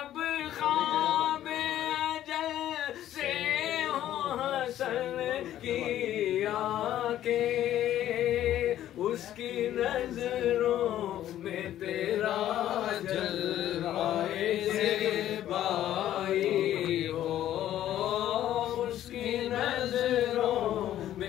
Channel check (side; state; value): right; quieter; 12.3 dB